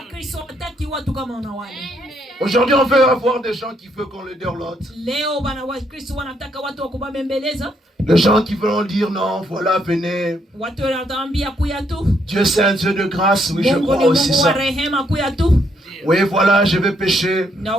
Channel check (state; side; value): normal; both; correlation 0.73